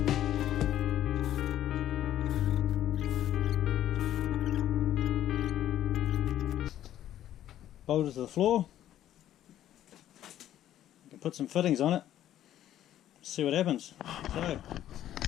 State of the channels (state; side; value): quieter; right; 12.1 dB